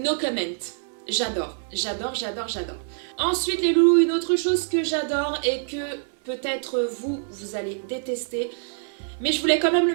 comment. J'adore. Ensuite les loulous, une autre chose que j'adore et que peut-être vous allez détester. Mais je voulais quand même le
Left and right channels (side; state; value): left; silent; digital silence